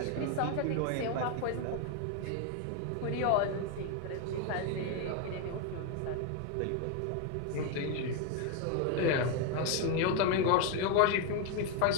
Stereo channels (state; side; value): different; both; correlation 0.01